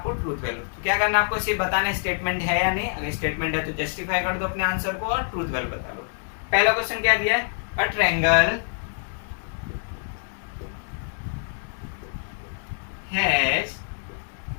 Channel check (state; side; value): silent; right; digital silence